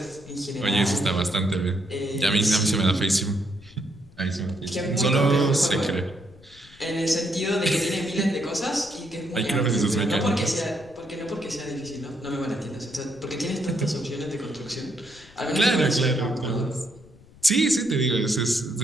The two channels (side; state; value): left; noise; rumble, 24 dB below the sound